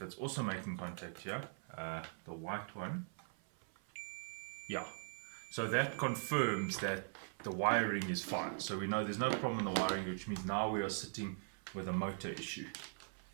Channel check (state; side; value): silent; left; 50 dB below the other